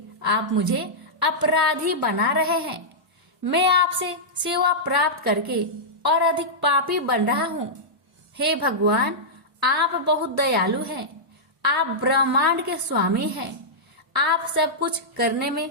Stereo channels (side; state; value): both; normal; correlation -0.11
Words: आप मुझे अपराधी बना रहे हैं। मैं आपसे सेवा प्राप्त करके और अधिक पापी बन रहा हूँ। हे भगवान, आप बहुत दयालु हैं। आप ब्रह्मांड के स्वामी हैं। आप सब कुछ करने में